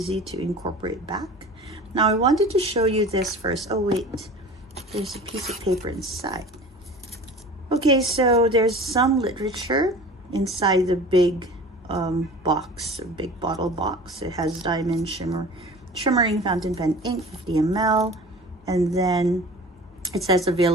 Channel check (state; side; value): normal; both; correlation 0.40